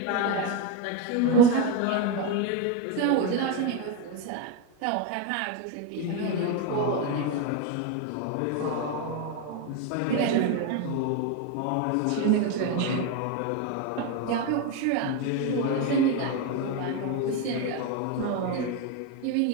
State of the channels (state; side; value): different; both; correlation 0.03